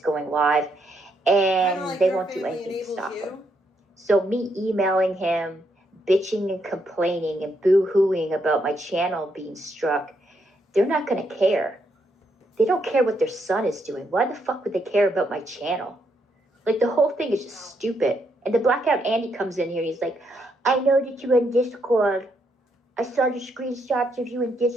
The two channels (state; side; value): normal; both; correlation 0.76